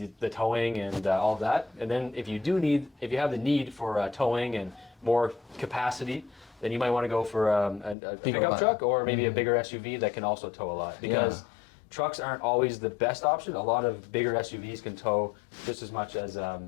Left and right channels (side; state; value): right; drops out; at 8.0 s